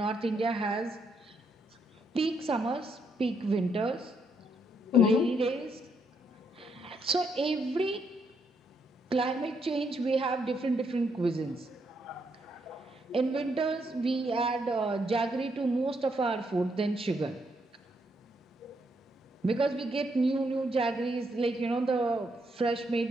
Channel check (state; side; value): normal; both; correlation 0.76